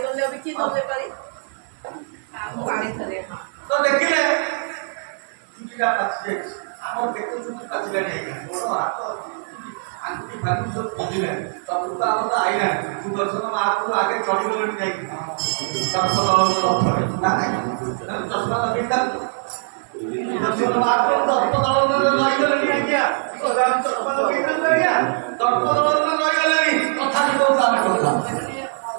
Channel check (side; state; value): left; silent; digital silence